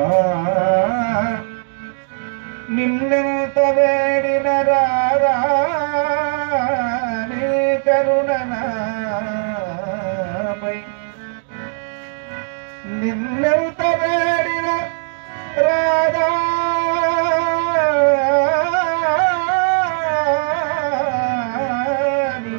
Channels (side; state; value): left; silent; digital silence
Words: నిన్నెంత వేడిన రారా నీ కరుణనాపై నిన్నెంత వేడిన రారా నీ